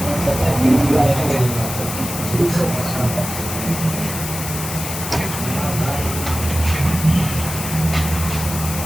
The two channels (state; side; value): noise; left; hiss, 7 dB below the sound